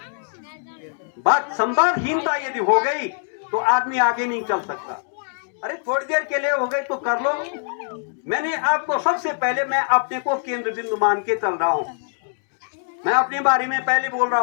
बात संवादहीनता यदि हो गई तो आदमी आगे नहीं चल सकता। अरे थोड़ी देर के लिए हो गई तो कर लो। मैंने आपको सबसे पहले, मैं अपने को केंद्र बिंदु मान के चल रहा हूं। मैं अपने बारे में पहले बोल रहा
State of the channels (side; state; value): right; silent; digital silence